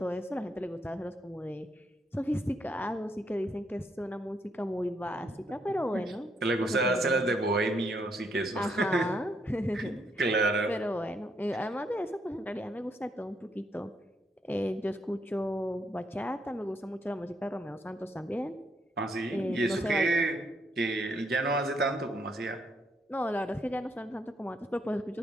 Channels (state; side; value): normal; both; correlation 0.75